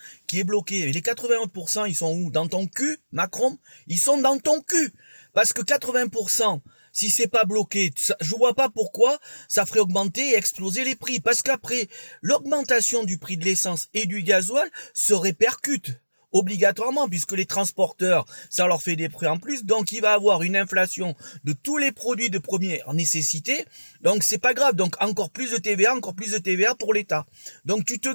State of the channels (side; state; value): both; inverted; correlation -1.00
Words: qui est bloqué. Et les 80%, ils sont où? Dans ton cul, Macron? Ils sont dans ton cul. Parce que 80%, si c'est pas bloqué, je vois pas pourquoi ça ferait augmenter et exploser les prix. Parce qu'après, l'augmentation du prix de l'essence et du gasoil se répercute obligatoirement, puisque les transporteurs, ça leur fait des prix en plus, donc il va avoir une inflation de tous les produits de première nécessité, donc c'est pas grave, donc encore plus de TVA pour l'État. Donc tu te